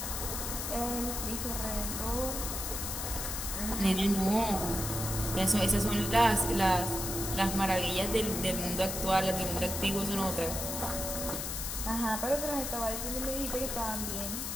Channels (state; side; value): noise; left; hiss, 4 dB below the sound